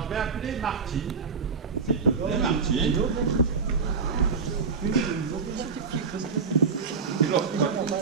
je vais appeler Martine. S'il te plaît, Martine.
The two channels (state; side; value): quieter; left; 5.2 dB